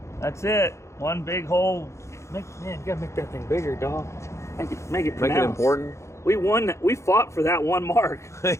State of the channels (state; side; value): late; right; 0.14 ms